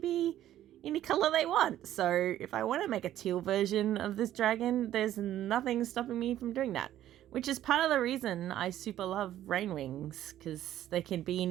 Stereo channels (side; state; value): left; quieter; 12.5 dB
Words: any color they want. So if I want to make a teal version of this dragon, there's nothing stopping me from doing that. Which is part of the reason I super love rain wings, because they can be